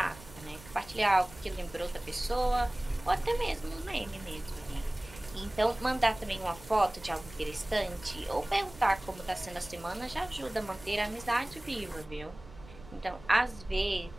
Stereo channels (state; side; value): noise; right; rumble, 19 dB below the sound